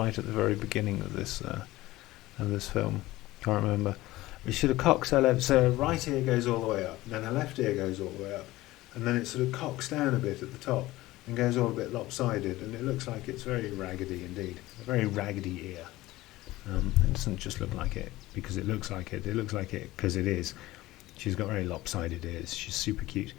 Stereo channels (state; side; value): quieter; right; 17.8 dB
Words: the very beginning of this film. Can't remember. But she sort of cocks her left, so her right ear goes all the way up, and then her left ear goes all the way up, and then it sort of cocks down a bit at the top and goes all a bit lopsided, and it looks like it's very raggedy indeed. A very raggedy ear. It doesn't just look like it because it looks like it. It looks like it because it is. She's got very lopsided ears. She's super cute.